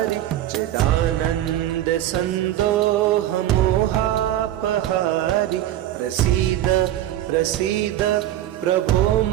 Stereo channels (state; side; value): quieter; left; 13.0 dB